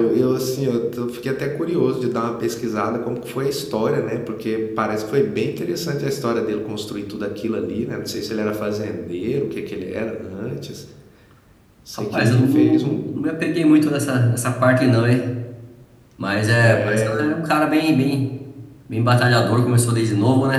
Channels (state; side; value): identical; both; correlation 1.00